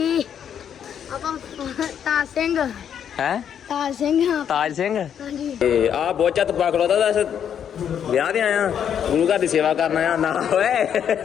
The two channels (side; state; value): right; quieter; 8.6 dB